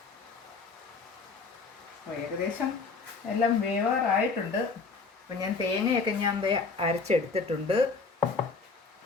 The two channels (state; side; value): quieter; right; 4.4 dB